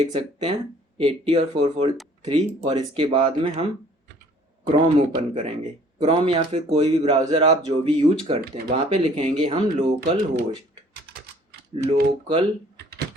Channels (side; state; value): both; normal; correlation 0.56